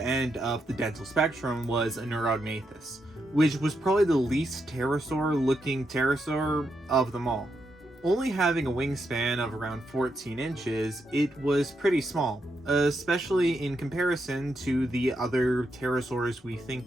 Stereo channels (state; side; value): normal; both; correlation 0.82